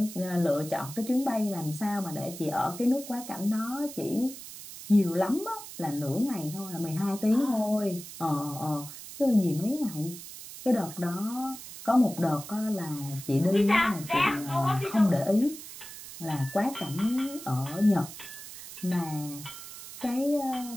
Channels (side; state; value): right; noise; hiss, 13 dB below the sound